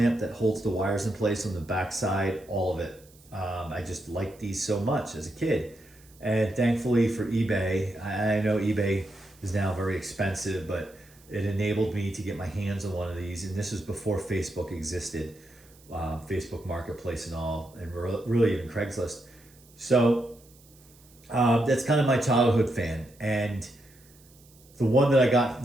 that holds the wires in place on the backside, all of it. I just liked these so much as a kid. And thankfully for eBay, I know eBay is now very expensive, but it enabled me to get my hands on one of these. And this was before Facebook existed, Facebook Marketplace and all, and really even Craigslist. So that's kind of my childhood fan. And the one that I got,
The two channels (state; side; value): noise; right; hiss, 27 dB below the sound